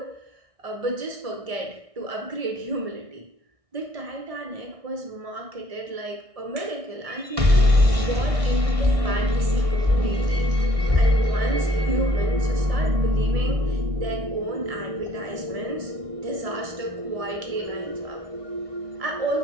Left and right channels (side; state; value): left; late; 1.6 ms